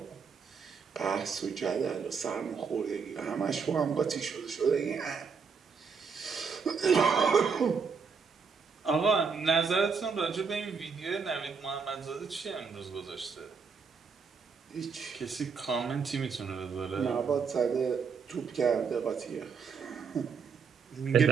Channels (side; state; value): left; quieter; 5.6 dB